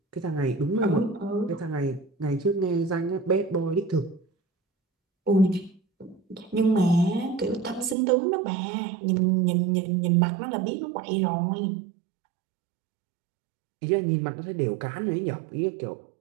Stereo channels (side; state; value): left; drops out; at 8.0 s